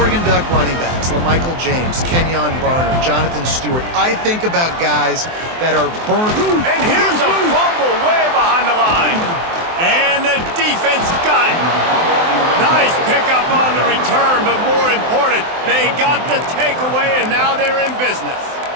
Duck running backs, LaMichael James, Kenyon Barner, Jonathan Stewart, I think about guys that are burnt. And here's a fumble way behind the line. And the defense got it. Nice pickup on the return, but more important, they got the takeaway, and now they're in business.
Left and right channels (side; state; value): left; late; 23 ms